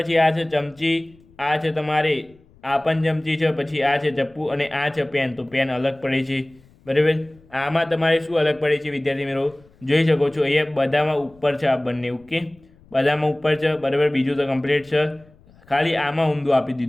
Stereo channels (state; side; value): noise; left; rumble, 28 dB below the sound